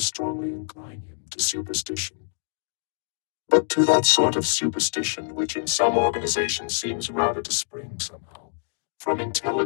incline him to superstition. But to that sort of superstition which in some organizations seems rather to spring somehow from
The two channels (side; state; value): right; silent; digital silence